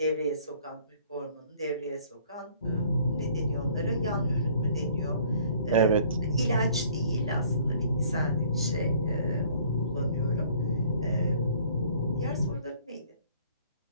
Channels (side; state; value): both; inverted; correlation -0.56